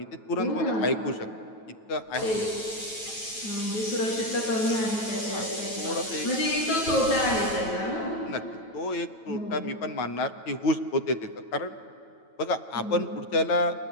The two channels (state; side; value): late; right; 9.1 ms